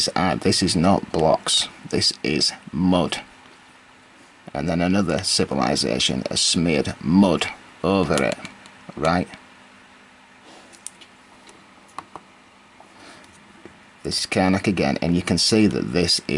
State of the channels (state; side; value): identical; both; correlation 1.00